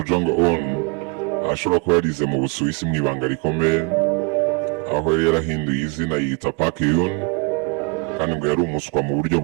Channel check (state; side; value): quieter; left; 30.5 dB